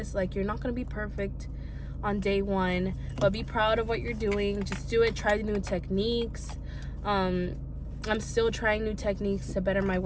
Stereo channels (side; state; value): both; identical; correlation 1.00